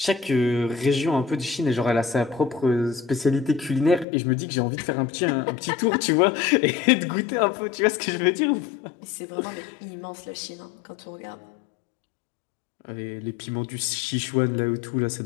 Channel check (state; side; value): drops out; right; at 4.0 s